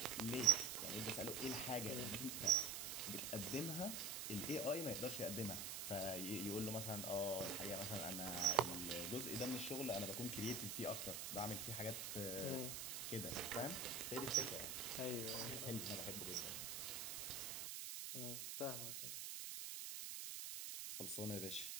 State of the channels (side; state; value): right; noise; hiss, 4 dB below the sound